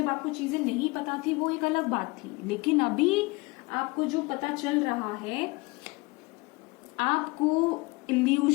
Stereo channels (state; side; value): quieter; right; 25.0 dB